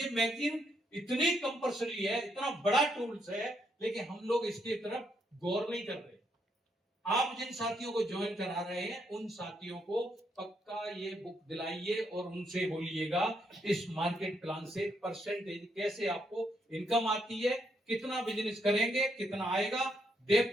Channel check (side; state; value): both; normal; correlation 0.76